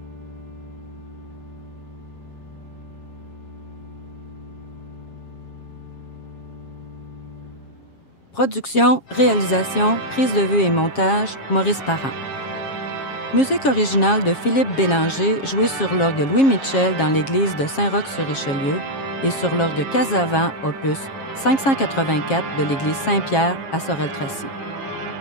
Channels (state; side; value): late; right; 7.4 ms